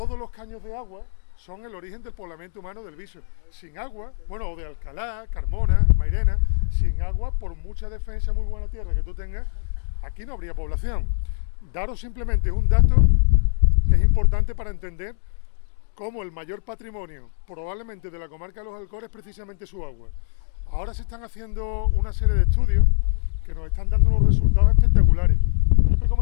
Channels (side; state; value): right; silent; digital silence